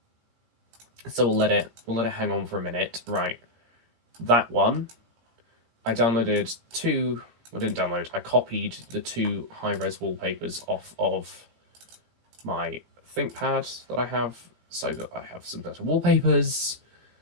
So we'll let it hang on for a minute. Right, that one. I downloaded two. I didn't download. I copied the two high-res wallpapers off of my ThinkPad that I have, so that I have some better wallpapers.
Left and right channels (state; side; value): late; left; 17 ms